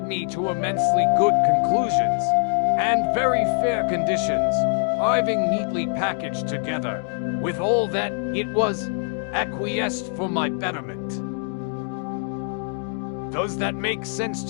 me to immensely good conclusions, and very fair conditions, arriving neatly packaged together, with all that it was acquiesced for my betterment. Does that make sense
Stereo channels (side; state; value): right; silent; 57 dB below the other